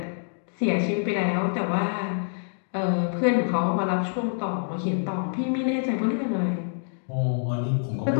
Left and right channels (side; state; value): right; silent; digital silence